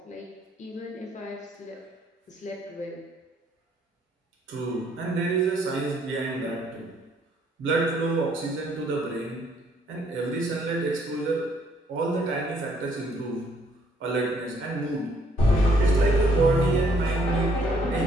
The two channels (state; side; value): normal; both; correlation 0.66